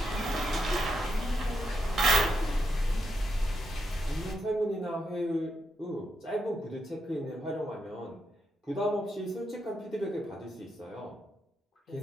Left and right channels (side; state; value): both; normal; correlation 0.83